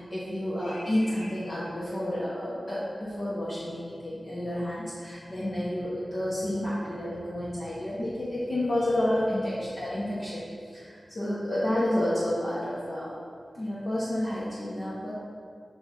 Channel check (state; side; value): normal; both; correlation 0.96